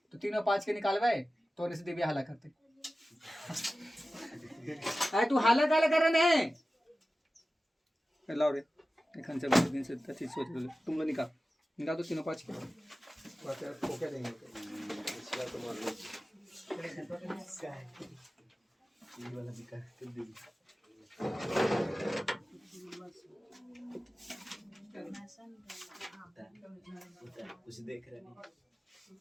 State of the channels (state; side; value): normal; both; correlation 0.95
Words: तो 3 और 5 के निकालवे तो से देवी हाला करते। अरे तू हाला काला कर रहे हैं? लाओ रे एखन से बहुत दिन से तथी सोच रहे तुम लोग निकाल दो 3 और 5 के तो क्या देंगे? कुछ देख रहे नहीं